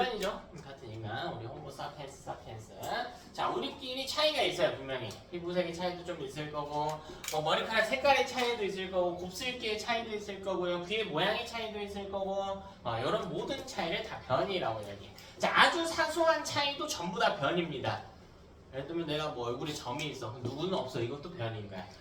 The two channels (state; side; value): identical; both; correlation 1.00